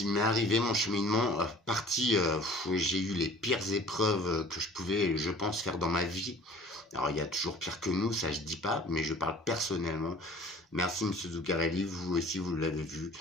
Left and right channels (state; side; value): normal; both; correlation 0.48